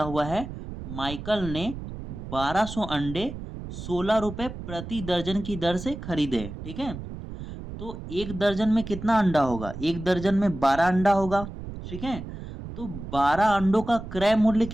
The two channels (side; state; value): right; noise; rumble, 10 dB below the sound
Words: हुआ है माइकल ने 1200 अंडे 16 रुपए प्रति दर्जन की दर से खरीदे। ठीक है, तो एक दर्जन में कितना अंडा होगा? एक दर्जन में 12 अंडा होगा। ठीक है, तो 12 अंडों का क्रय मूल्य